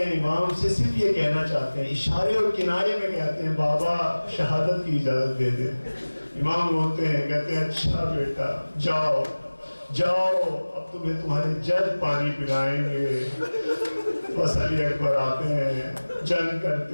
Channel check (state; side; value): inverted; both; correlation -1.00